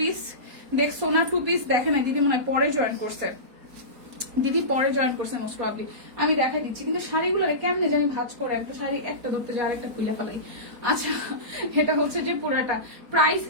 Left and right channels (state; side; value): late; left; 4.2 ms